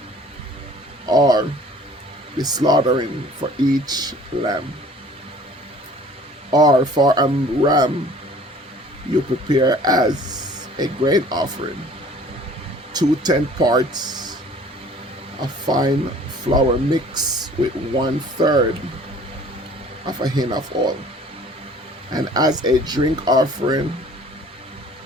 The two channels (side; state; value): both; normal; correlation 0.50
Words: or the slaughtering for each lamb. Or for a ram you prepare as a grain offering 2/10 parts of fine flour mixed with 1/3 of a hin of oil. And as a drink offering,